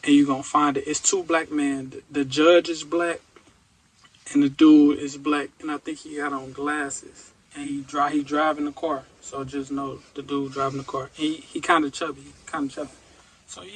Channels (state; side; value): identical; both; correlation 1.00